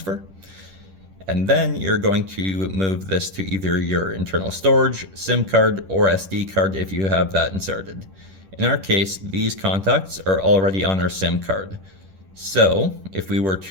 And then you're going to move this to either your internal storage, SIM card, or SD card if you have that inserted. In our case, these contacts are already on our SIM card. So if we were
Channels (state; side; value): late; left; 10 ms